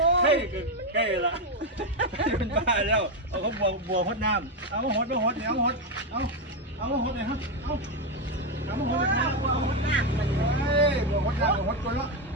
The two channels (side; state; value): both; normal; correlation 0.07